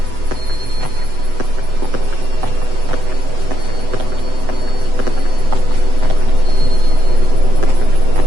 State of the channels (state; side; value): late; left; 7.9 ms